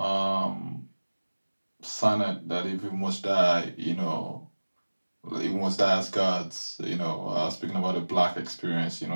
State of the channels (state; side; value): inverted; both; correlation -1.00